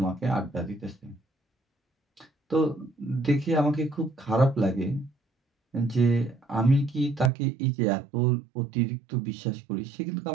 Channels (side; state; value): left; drops out; at 7.3 s